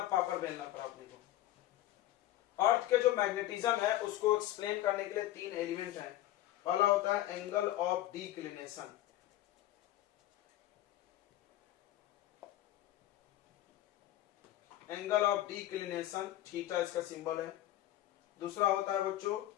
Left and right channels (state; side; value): quieter; right; 14.6 dB